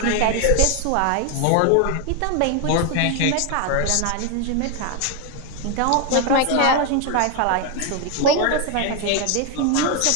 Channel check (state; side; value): different; both; correlation 0.01